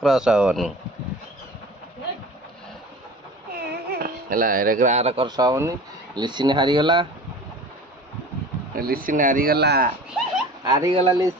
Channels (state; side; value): normal; both; correlation 0.40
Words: हबनी हला एरे गार क्रस हबनी लिसिन हारी गला लिसिन हारी गला